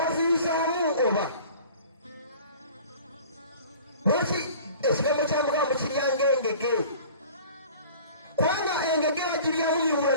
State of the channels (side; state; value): both; inverted; correlation -0.44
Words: oba lwaki ekigambo kya Mukama mukiryanga engege kubanga engege bagiryamu miwula